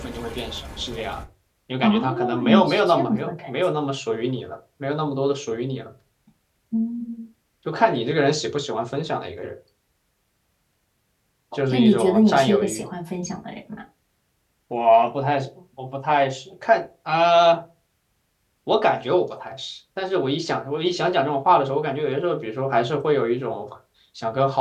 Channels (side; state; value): both; identical; correlation 1.00